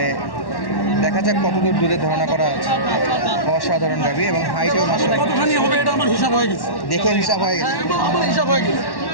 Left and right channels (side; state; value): right; late; 1.1 ms